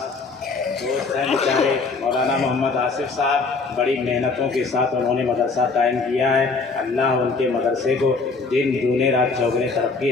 दोस्त हैं बेचारे मौलाना मोहम्मद आसिफ साहब, बड़ी मेहनतों के साथ उन्होंने मदरसा कायम किया है। अल्लाह उनके मदरसे को दिन दूने रात चौगुने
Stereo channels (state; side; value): quieter; right; 4.1 dB